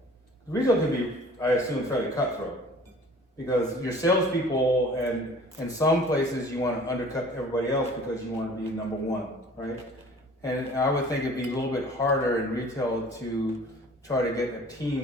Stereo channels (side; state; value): both; normal; correlation 0.48